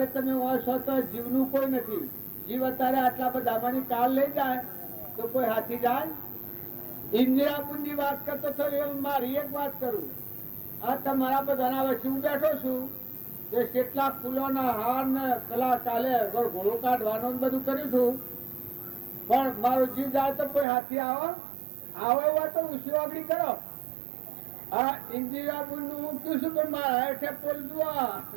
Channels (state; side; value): drops out; left; at 20.7 s